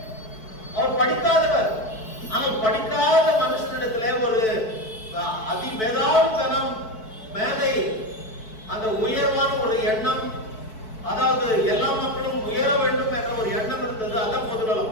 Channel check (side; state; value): right; late; 4.6 ms